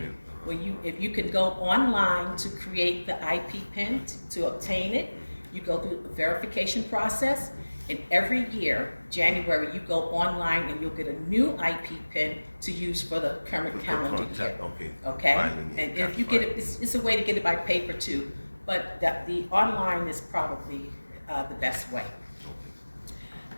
If you can go online to create the IP PIN to obtain it, you go through a verification process, and every year, January, you go online and you'll get a new IP PIN to use for the current calendar year. Okay? And if you get it, it's a way to get it by paper too, but the online is probably the best way.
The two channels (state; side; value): inverted; both; correlation -1.00